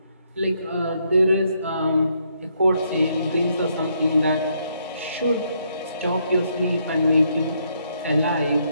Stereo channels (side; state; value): both; inverted; correlation -0.74